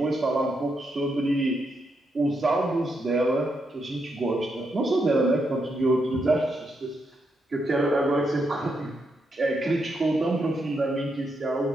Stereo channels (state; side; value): normal; both; correlation 0.81